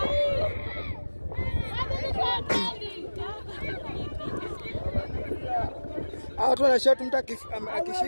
Watu wana shot mtu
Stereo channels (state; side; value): inverted; both; correlation -1.00